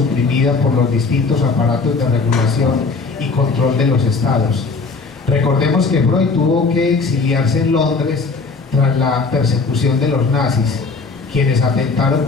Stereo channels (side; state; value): right; quieter; 4.2 dB